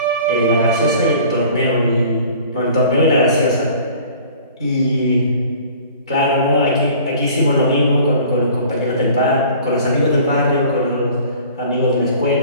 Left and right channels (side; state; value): both; inverted; correlation -0.48